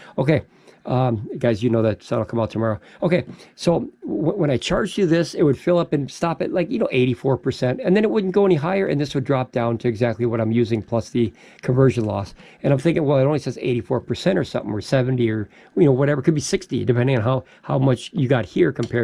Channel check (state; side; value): identical; both; correlation 1.00